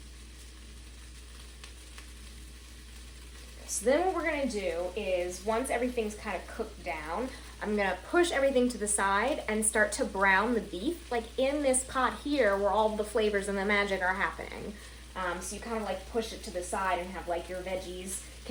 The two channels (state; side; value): identical; both; correlation 1.00